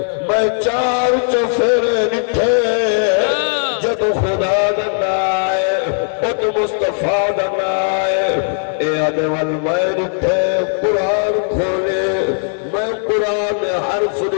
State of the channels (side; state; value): right; silent; 64 dB below the other